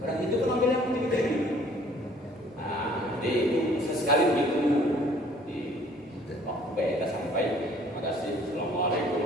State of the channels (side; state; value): both; normal; correlation 0.56